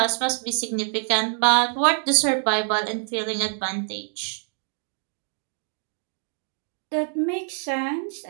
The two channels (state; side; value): silent; left; digital silence